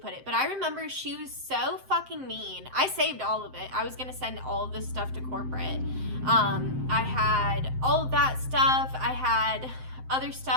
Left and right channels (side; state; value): left; late; 7.7 ms